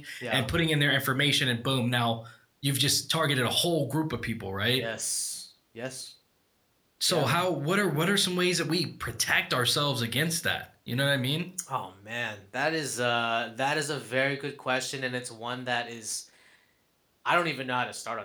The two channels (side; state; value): both; identical; correlation 1.00